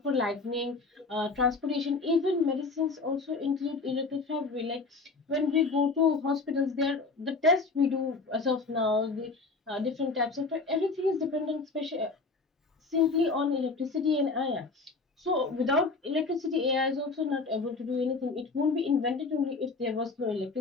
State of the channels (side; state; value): right; quieter; 3.9 dB